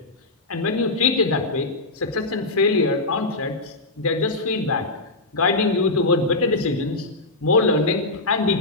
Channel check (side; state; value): right; quieter; 3.0 dB